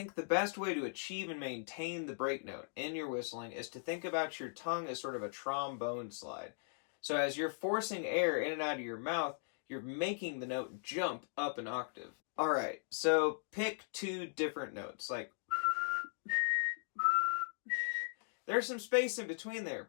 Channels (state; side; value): silent; right; digital silence